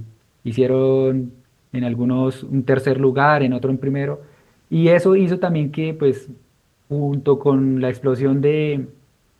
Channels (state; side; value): identical; both; correlation 1.00